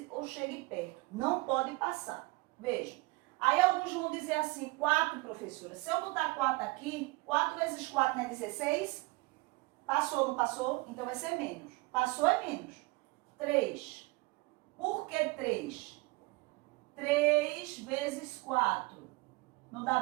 ou chegue perto. Não pode passar. Veja. Aí alguns vão dizer assim, 4, professora. Se eu botar 4 aqui, 4 vezes 4 não é 16? Passou ou não passou? Então vai ser menos. Passou é menos. 3. Por que 3? 3 vezes 4. Não dá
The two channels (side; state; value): left; quieter; 24.4 dB